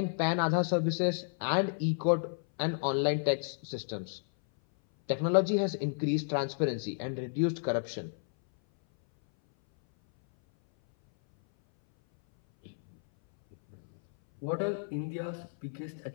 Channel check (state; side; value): silent; right; 57 dB below the other